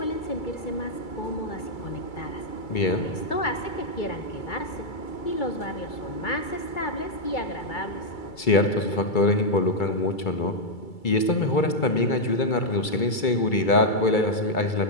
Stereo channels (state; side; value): late; right; 2.3 ms